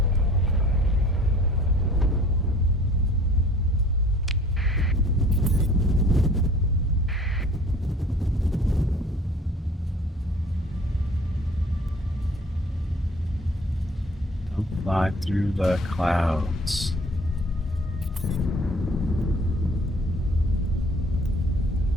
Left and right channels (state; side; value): normal; both; correlation 0.51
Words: Don't fly through the clouds.